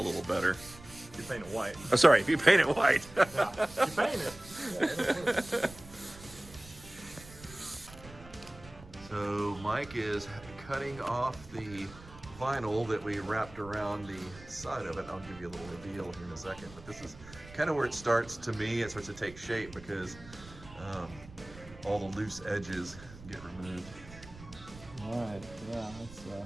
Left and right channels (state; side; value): noise; right; rumble, 18 dB below the sound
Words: better. You paint it white. Oh, sorry, if you paint it white. Yeah, you paint it. So Mike is cutting off the vinyl that we wrapped around the side of it. I'll give you a little reveal here in a second, but this is kind of where it starts, to me, it starts to take shape because all the loose edges get removed. All right, yeah, it's